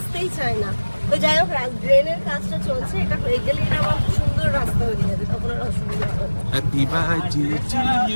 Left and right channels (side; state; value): both; inverted; correlation -1.00